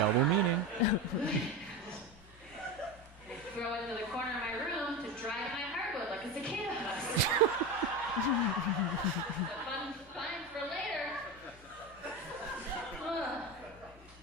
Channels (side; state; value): both; normal; correlation 0.21